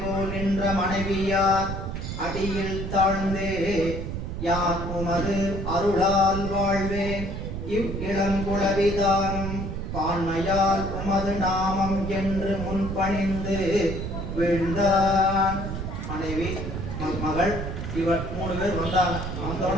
போல் நின்ற மனைவியார் அடியில் தாழ்ந்தே யான் உமது அருளால் வாழ்வேன் இவ் இளங்குளவிதானும் பான்மையால் உமது நாமம் என்று முன்பணிந்து வீழ்ந்தான். மனைவி மகள் இவர் 3 பேர் வந்தாங்க.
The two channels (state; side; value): noise; right; rumble, 5 dB below the sound